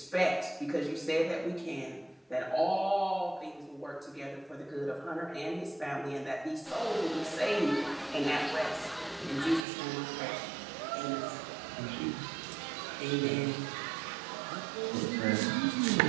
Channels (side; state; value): left; drops out; at 9.6 s